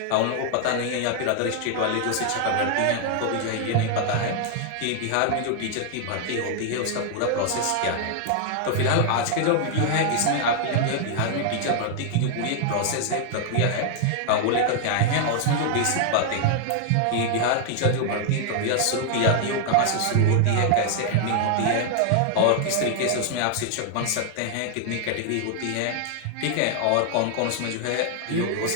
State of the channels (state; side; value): different; both; correlation 0.00